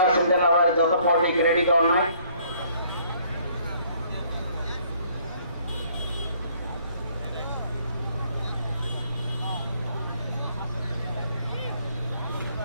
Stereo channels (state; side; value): inverted; both; correlation -0.63